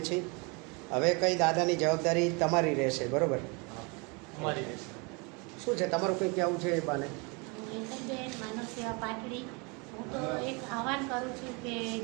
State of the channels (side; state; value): left; quieter; 30.6 dB